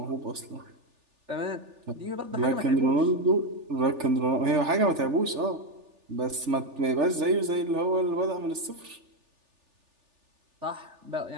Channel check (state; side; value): late; left; 3.4 ms